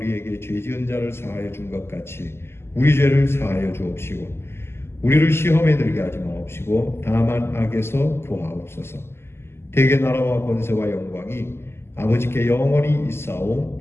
죄 지은 자를 사하여 준 것 같이 우리 죄를 사하여 주옵시고 우리를 시험에 들게 하지 마옵시고 다만 악에서 구하옵소서. 대개 나라와 권세와 영광이 아버지께 영원히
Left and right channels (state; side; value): late; right; 0.12 ms